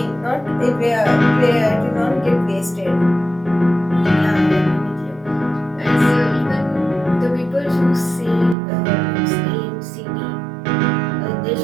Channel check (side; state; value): left; drops out; at 8.6 s